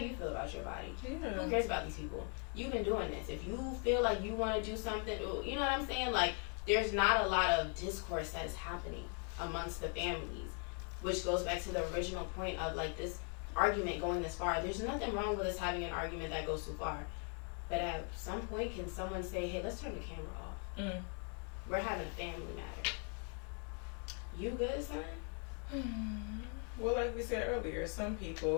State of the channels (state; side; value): quieter; right; 40.0 dB